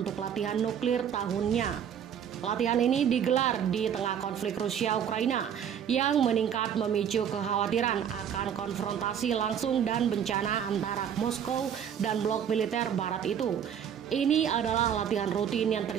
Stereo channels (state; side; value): quieter; left; 8.6 dB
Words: latihan nuklir tahunnya. Latihan ini digelar di tengah konflik Rusia-Ukraina yang meningkat memicu kekhawatiran akan konfrontasi langsung dan bencana antara Moskow dan blok militer barat itu. Ini adalah latihan rutin yang